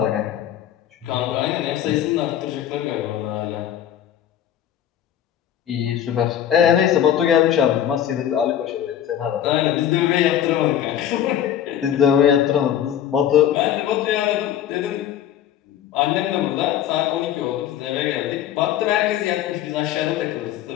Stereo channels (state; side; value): quieter; right; 10.4 dB